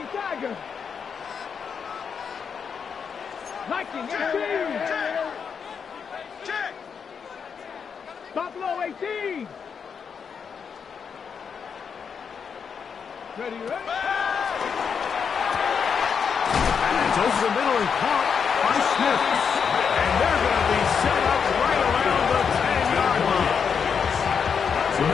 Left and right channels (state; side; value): quieter; right; 6.6 dB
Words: Tiger. 19, 18. Buffalo 18. Ready, ready. And it's over the middle and caught by Smith. And they're going to be set up right around the 10-yard line.